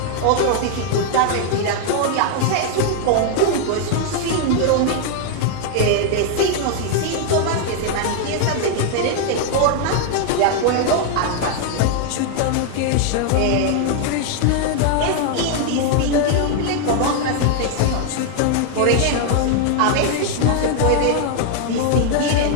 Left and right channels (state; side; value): different; both; correlation 0.00